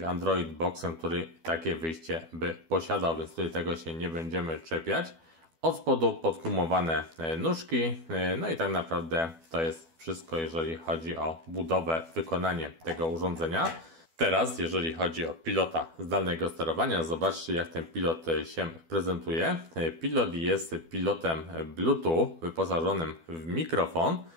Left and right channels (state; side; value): late; left; 12 ms